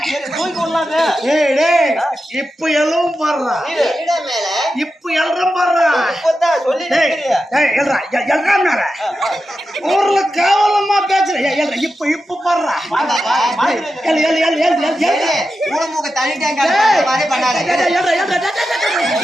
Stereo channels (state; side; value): normal; both; correlation 0.90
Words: இப்ப எல்லாம் பாடுறா, இப்ப எல்லாம் பாடுறா. ஊர்ல கேவலமா பேசுற. இப்ப இப்ப பாடுறா.